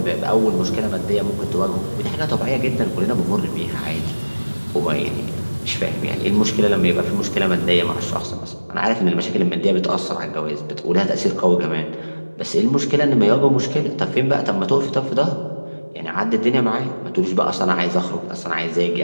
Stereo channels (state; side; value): inverted; both; correlation -1.00